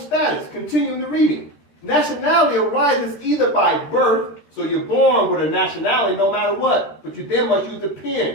Continuing the reading. Nationality arises either by birth, so you're born with a nationality no matter what, but you then must use the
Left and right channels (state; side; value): late; right; 13 ms